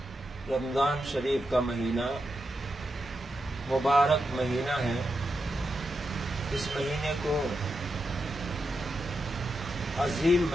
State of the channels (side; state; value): both; normal; correlation 0.86